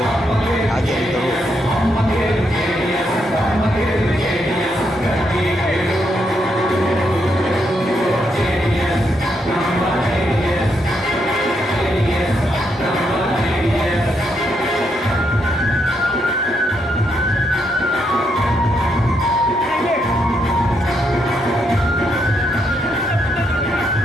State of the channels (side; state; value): both; normal; correlation 0.78